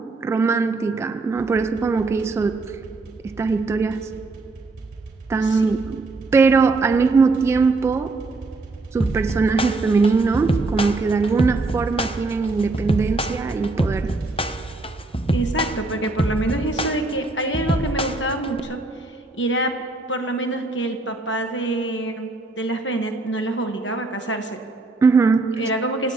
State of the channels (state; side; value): quieter; left; 3.4 dB